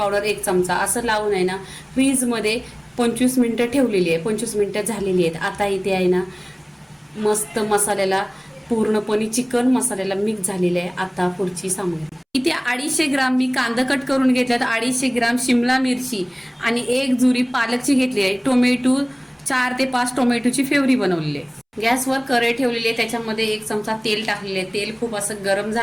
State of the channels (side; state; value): both; identical; correlation 1.00